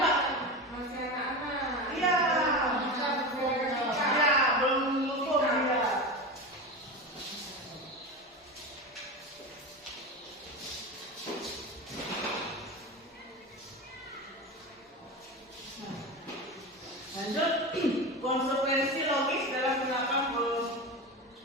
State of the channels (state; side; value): normal; both; correlation 0.24